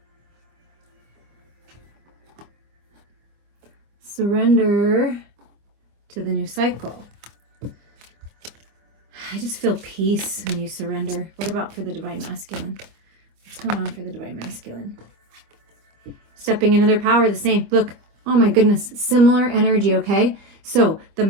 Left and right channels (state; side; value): late; left; 25 ms